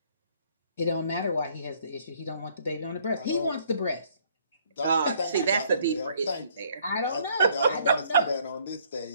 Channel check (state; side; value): inverted; both; correlation -0.63